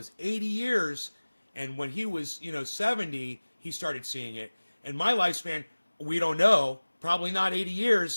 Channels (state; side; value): inverted; both; correlation -1.00